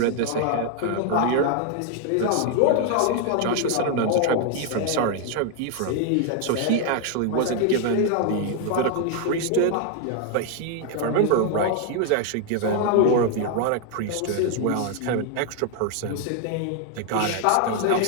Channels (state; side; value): different; both; correlation 0.00